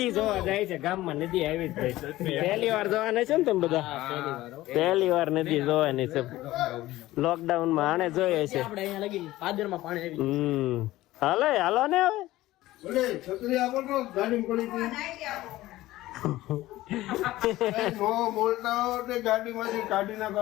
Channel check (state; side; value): quieter; right; 16.7 dB